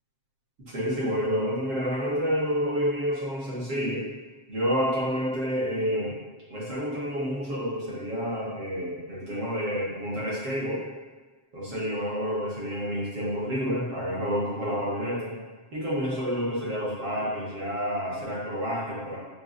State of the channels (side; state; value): left; late; 7.5 ms